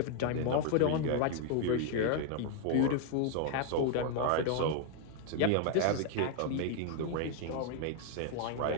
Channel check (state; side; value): different; both; correlation 0.00